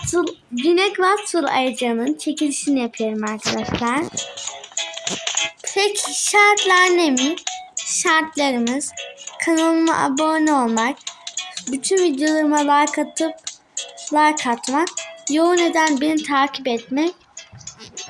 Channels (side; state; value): both; identical; correlation 1.00